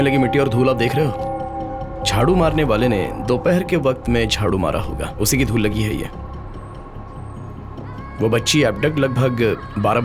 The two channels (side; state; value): both; identical; correlation 1.00